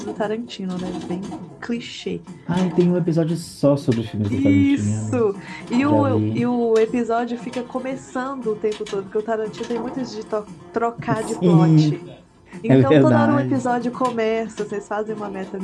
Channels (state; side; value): identical; both; correlation 1.00